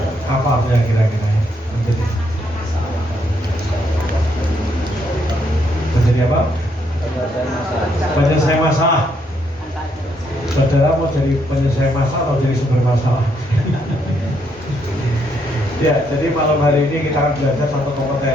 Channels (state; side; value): normal; both; correlation 0.74